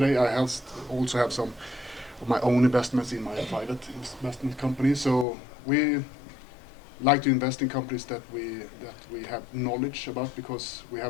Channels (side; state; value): right; drops out; at 5.2 s